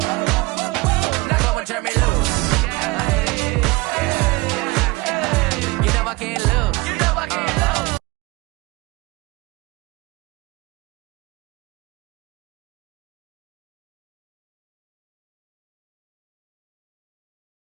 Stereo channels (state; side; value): quieter; left; 23.3 dB